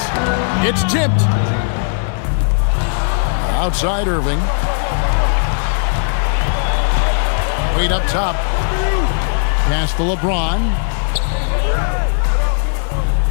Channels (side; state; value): right; silent; 67 dB below the other